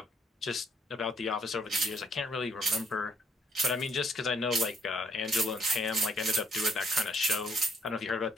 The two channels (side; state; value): both; normal; correlation 0.68